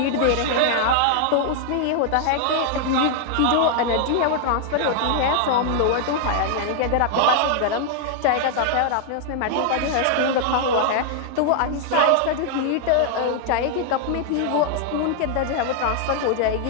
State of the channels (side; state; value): both; different; correlation 0.00